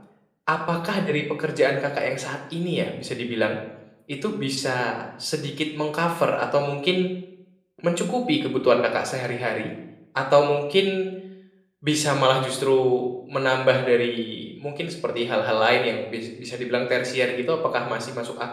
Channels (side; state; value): both; identical; correlation 1.00